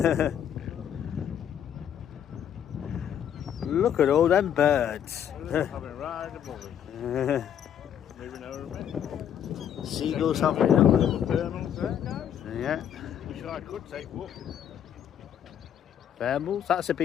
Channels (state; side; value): quieter; right; 9.5 dB